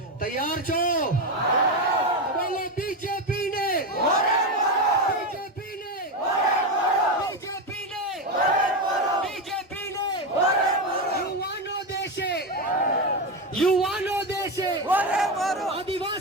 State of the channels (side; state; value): both; normal; correlation 0.13